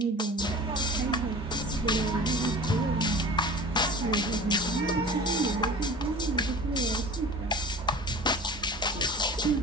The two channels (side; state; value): both; normal; correlation 0.38